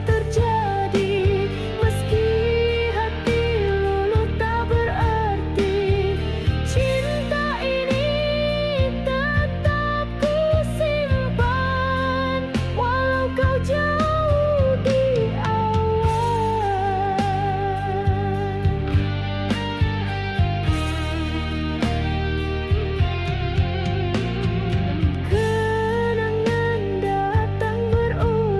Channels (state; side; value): identical; both; correlation 1.00